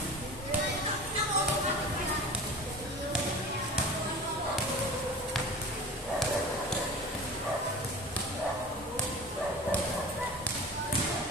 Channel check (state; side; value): normal; both; correlation 0.37